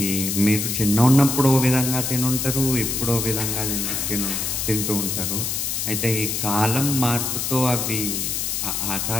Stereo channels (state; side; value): noise; left; hiss, 1 dB below the sound